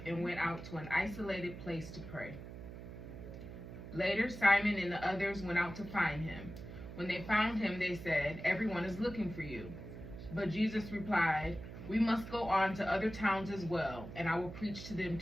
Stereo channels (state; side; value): noise; right; hum, 11 dB below the sound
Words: and went out to an isolated place to pray. Later, Simon and the others went out to find him. When they found him, they said, "Everyone is looking for you." But Jesus replied, "We must go on to other towns as well, and I will preach to them